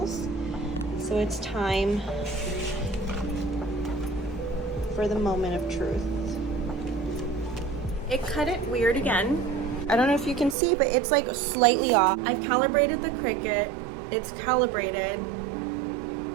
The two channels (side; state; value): left; drops out; at 10.6 s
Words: So it's time for the moment of truth. It cut it weird again. I don't know if you can see, but it's like slightly off. I've calibrated the Cricut. It's calibrated.